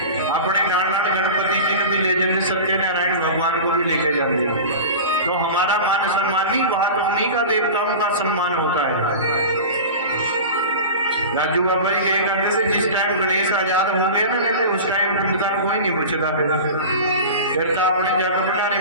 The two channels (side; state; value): both; inverted; correlation -0.32